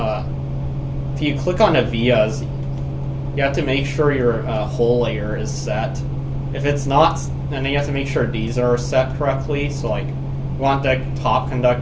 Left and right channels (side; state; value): both; identical; correlation 1.00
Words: if you click on the vias, you have to make sure your whole layer is set. If it's not, then you have to make sure these are set correctly. So like, you want the top